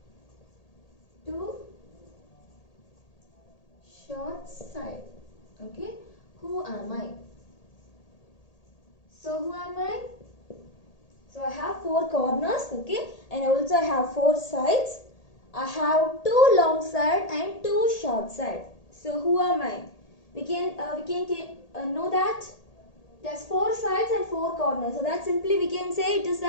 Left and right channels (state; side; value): late; right; 1.8 ms